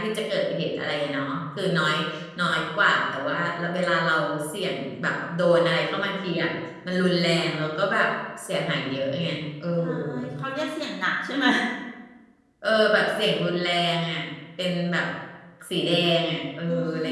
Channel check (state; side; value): identical; both; correlation 1.00